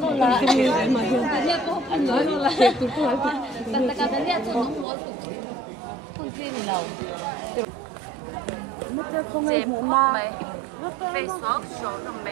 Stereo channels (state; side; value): drops out; left; at 4.9 s